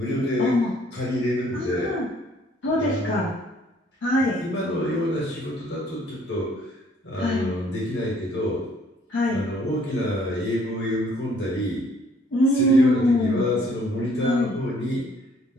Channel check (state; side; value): normal; both; correlation 0.61